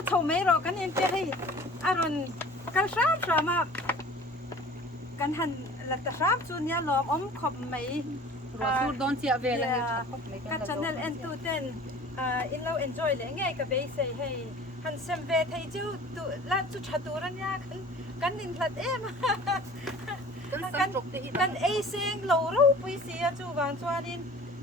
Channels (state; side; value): normal; both; correlation 0.45